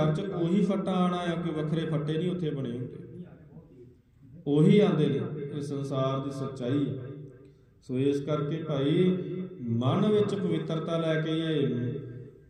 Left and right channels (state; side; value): identical; both; correlation 1.00